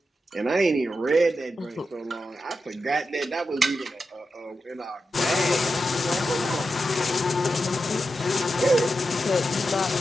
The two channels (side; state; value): both; normal; correlation 0.89